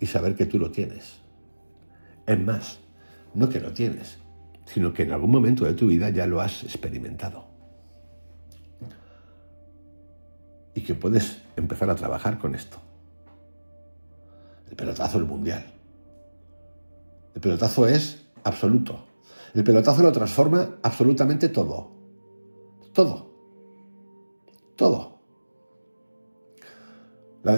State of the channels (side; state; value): both; inverted; correlation -1.00